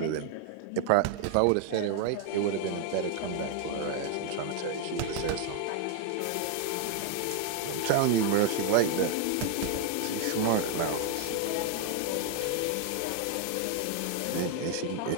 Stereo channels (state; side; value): different; both; correlation 0.00